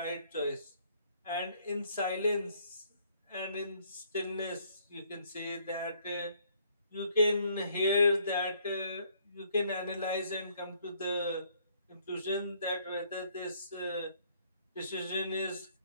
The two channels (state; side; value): inverted; both; correlation -0.65